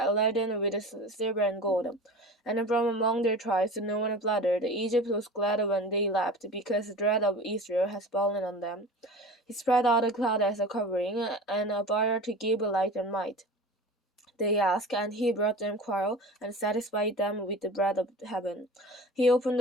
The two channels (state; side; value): normal; both; correlation 0.36